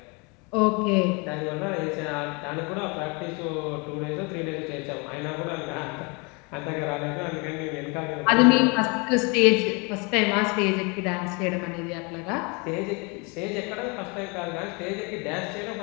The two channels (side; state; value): right; quieter; 30.3 dB